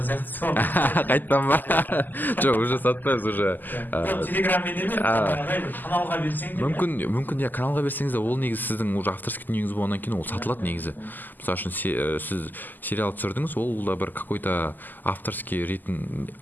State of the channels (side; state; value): right; late; 0.087 ms